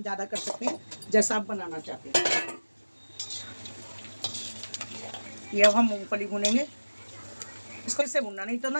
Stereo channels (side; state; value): both; inverted; correlation -1.00